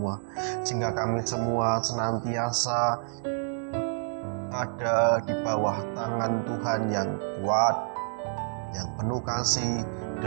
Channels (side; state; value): left; silent; digital silence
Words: sehingga kami semua senantiasa ada di bawah tangan Tuhan yang kuat, yang penuh kasih